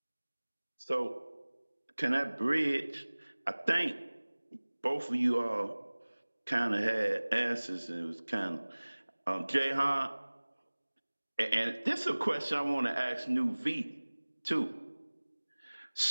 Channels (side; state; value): both; inverted; correlation -1.00